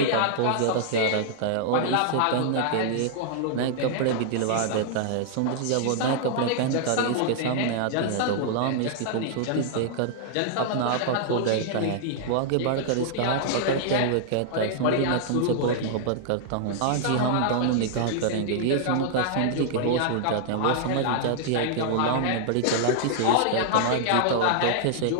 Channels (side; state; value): both; different; correlation -0.01